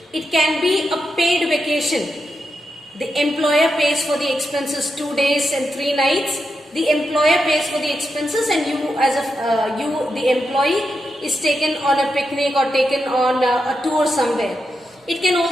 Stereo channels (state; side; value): normal; both; correlation 0.86